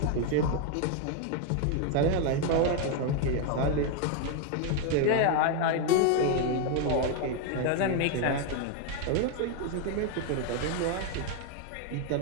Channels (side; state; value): both; different; correlation 0.01